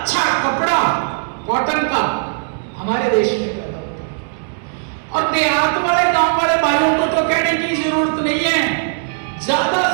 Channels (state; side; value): silent; left; digital silence